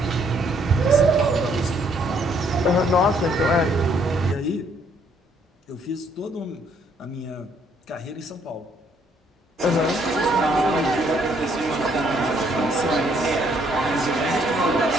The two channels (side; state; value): both; normal; correlation 0.67